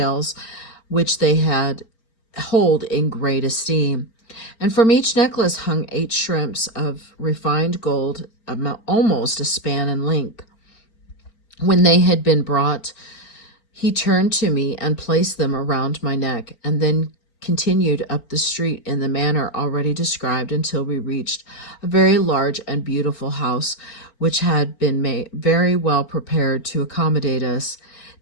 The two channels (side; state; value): right; late; 4.4 ms